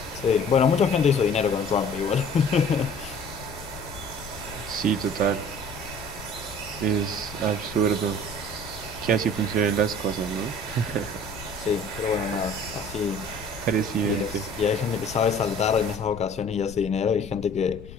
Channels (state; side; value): noise; left; rumble, 15 dB below the sound